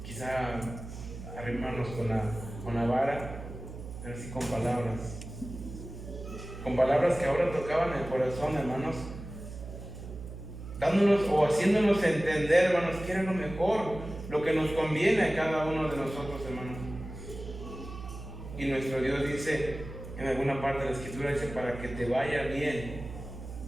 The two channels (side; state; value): right; noise; hum, 11 dB below the sound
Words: quizá arrimarnos con la vara, pero sí con palabras. Con palabras que ahora tocaban el corazón, hermanos, dándonos o haciéndonos entender, hermanos, que era lo mejor, lo que nos conviene a cada uno de nosotros, hermanos. Y nuestro Dios dice, en alguna parte de la Escritura, dice, para que te vaya bien.